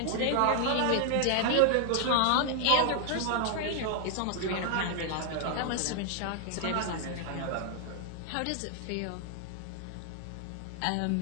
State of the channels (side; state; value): both; different; correlation 0.00